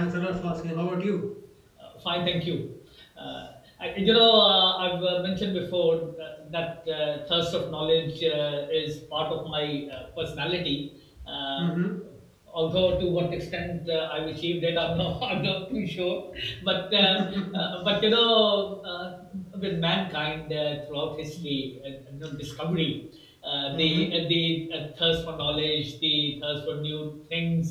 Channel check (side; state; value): both; identical; correlation 1.00